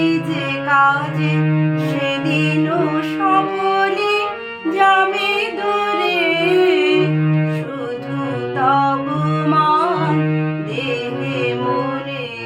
যে কাজে, সেদিনও সকলে যাবে দূরে। শুধু তব মান দেহে মনে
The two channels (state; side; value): identical; both; correlation 1.00